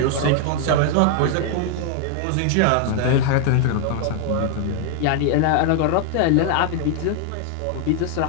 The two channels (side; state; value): both; different; correlation 0.00